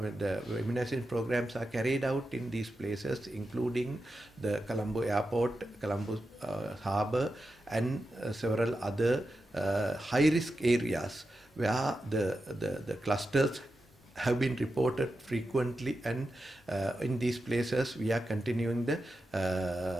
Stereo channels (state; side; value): normal; both; correlation 0.90